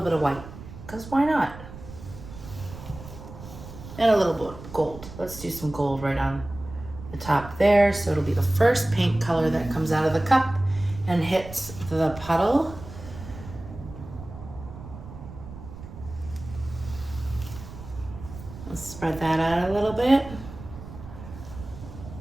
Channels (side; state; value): right; noise; rumble, 14 dB below the sound